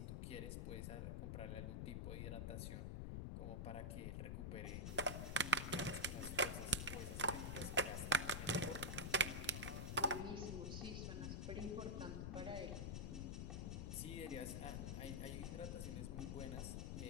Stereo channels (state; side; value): noise; left; rumble, 2 dB below the sound